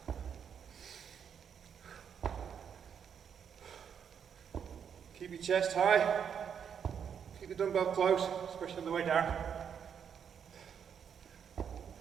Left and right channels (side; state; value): left; quieter; 7.7 dB